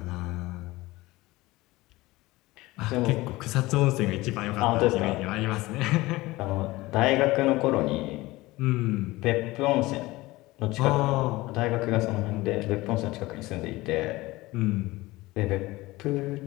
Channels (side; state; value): right; quieter; 19.8 dB